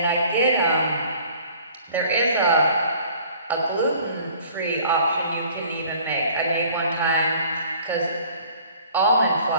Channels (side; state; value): both; inverted; correlation -0.52